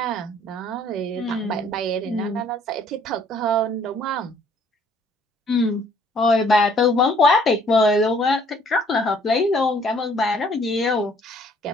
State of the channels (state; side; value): normal; both; correlation 0.60